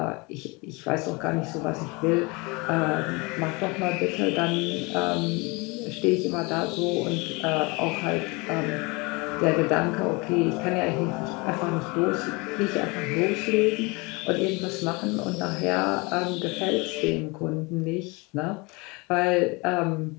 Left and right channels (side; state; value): right; quieter; 27.1 dB